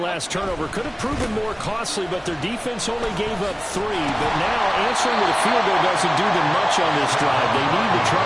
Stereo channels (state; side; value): identical; both; correlation 1.00